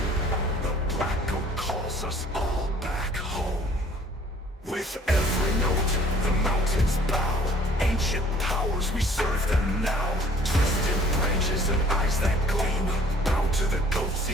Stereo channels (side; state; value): both; normal; correlation 0.55